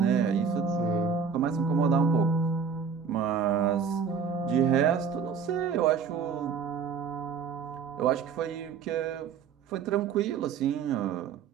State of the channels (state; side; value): quieter; left; 6.3 dB